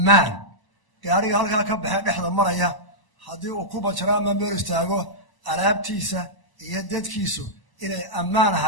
gaariga halkaa ka baxee dhexda maraya haddii uu ku banjaro ama meel istaago alaabtiisa iyo dadkiisu inay ammaan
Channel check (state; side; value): late; right; 1.0 ms